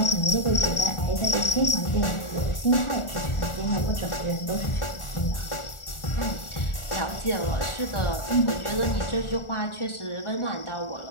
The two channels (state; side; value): late; right; 1.4 ms